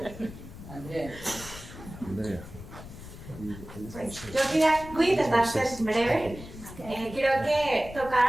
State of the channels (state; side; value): noise; left; rumble, 14 dB below the sound